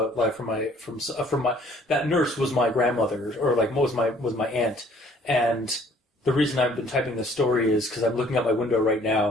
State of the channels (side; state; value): both; normal; correlation 0.58